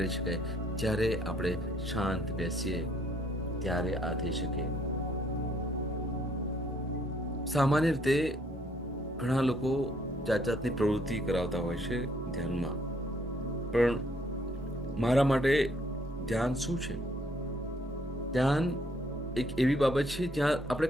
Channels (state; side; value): normal; both; correlation 0.66